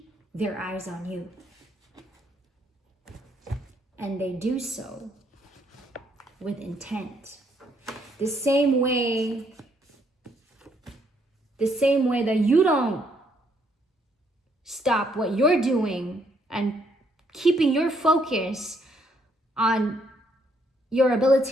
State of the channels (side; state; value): both; normal; correlation 0.70